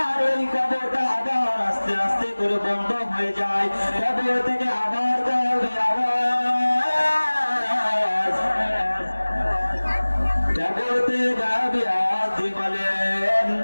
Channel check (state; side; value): inverted; both; correlation -1.00